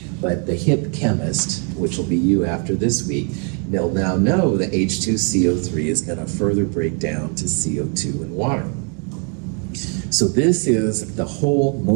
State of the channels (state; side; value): quieter; left; 39.0 dB